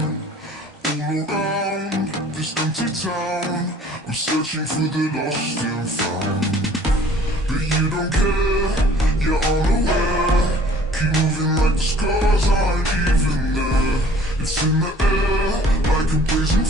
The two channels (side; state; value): both; normal; correlation 0.53